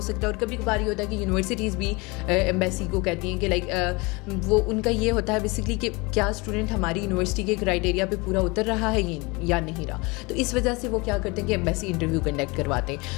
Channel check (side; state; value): right; quieter; 25.9 dB